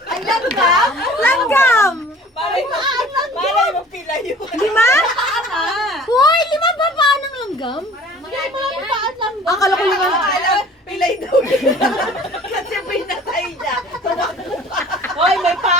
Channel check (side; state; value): both; normal; correlation 0.48